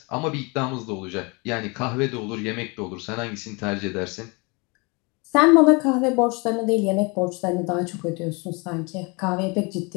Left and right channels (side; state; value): right; quieter; 29.1 dB